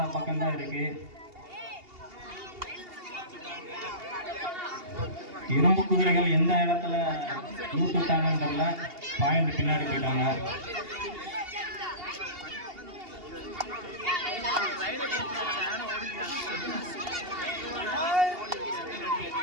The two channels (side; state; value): left; late; 2.8 ms